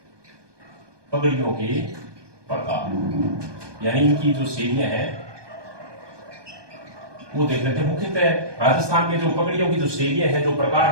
पगड़ियों के प्रकार यानी इनकी जो शैलियां हैं वो देख लेते हैं। मुख्यतः राजस्थान में जो पगड़ियों की जो शैलियां हैं, जो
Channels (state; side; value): late; left; 1.2 ms